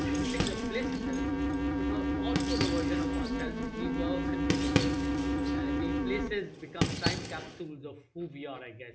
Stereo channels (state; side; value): identical; both; correlation 1.00